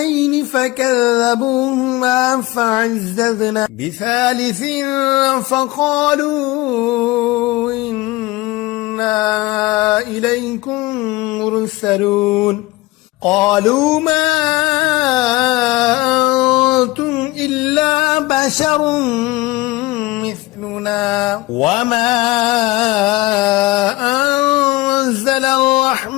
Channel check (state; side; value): quieter; right; 20.7 dB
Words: فكذبوهما فعززنا بثالث فقالوا إنا إليكم مرسلون. قالوا ما أنتم إلا بشر مثلنا وما أنزل